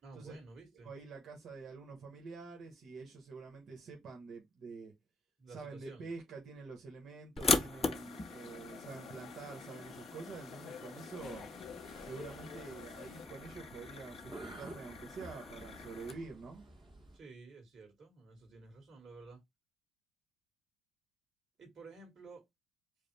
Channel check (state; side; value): normal; both; correlation 0.72